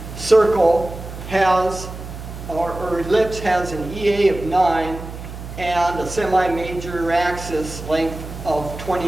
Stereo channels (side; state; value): right; noise; hum, 11 dB below the sound